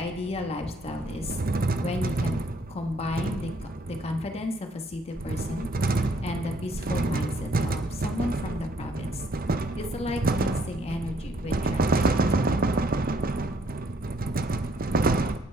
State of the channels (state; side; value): normal; both; correlation 0.66